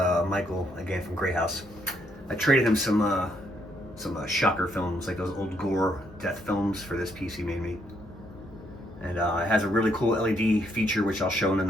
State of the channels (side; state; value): both; normal; correlation 0.73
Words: again from Grey House. I traded him some shocker films, like those old gore death films, for this piece he made me. And it has a really cool LED feature, which I'll show in the